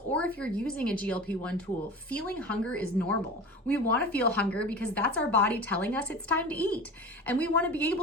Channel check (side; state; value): both; normal; correlation 0.33